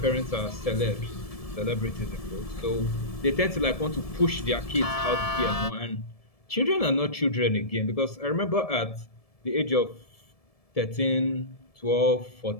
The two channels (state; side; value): late; right; 1.7 ms